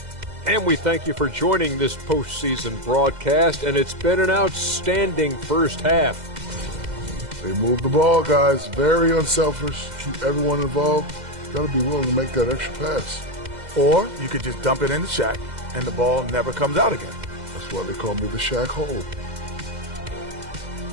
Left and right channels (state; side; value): late; left; 2.0 ms